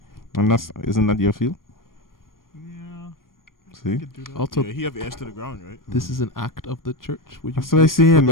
And isn't that your field? Yeah. See? Could do that. Also, Yeah, he have ears to the ground, right? this is an act of the church. Would you That's what I saying, put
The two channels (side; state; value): right; late; 0.91 ms